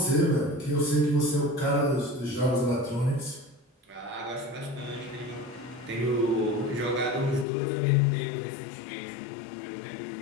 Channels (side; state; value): right; drops out; at 7.5 s